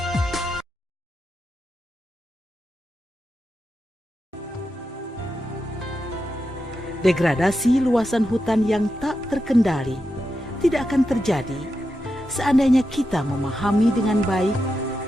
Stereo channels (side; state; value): both; normal; correlation 0.88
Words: Degradasi luasan hutan yang tak terkendali tidak akan terjadi seandainya kita memahami dengan baik